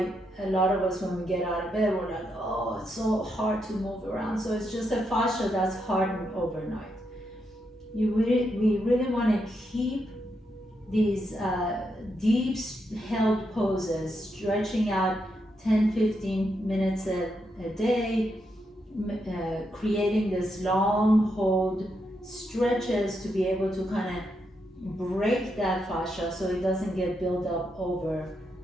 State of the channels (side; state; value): both; normal; correlation 0.82